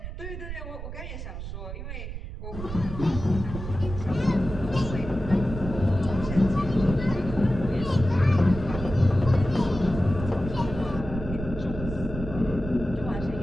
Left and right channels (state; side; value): noise; right; rumble, 8 dB below the sound